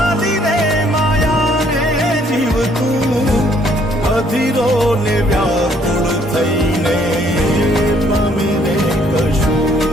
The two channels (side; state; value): both; normal; correlation 0.65